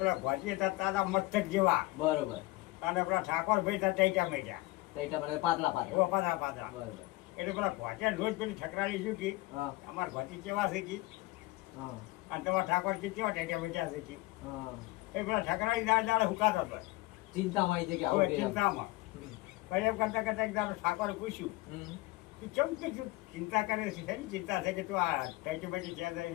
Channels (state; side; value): quieter; right; 20.5 dB